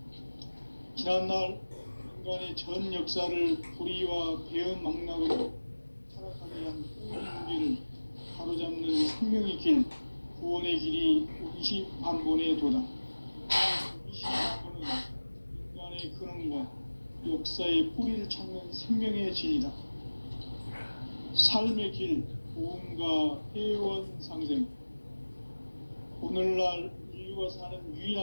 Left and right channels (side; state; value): both; inverted; correlation -1.00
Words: 지난날 인간의 전 역사를 불의와 배은 망락으로 타락하게 한 모든 문제를 바로잡는 생명의 길, 구원의 길이 원시반본의 도다. 원시반본은 인간의 근원과 역사의 뿌리를 찾는 생명의 진리다. 삶의 길, 보험과 회원 상생. 오늘날 인류 태울주가 사는